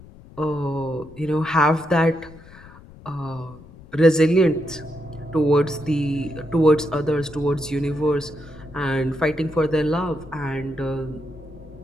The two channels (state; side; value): noise; left; rumble, 20 dB below the sound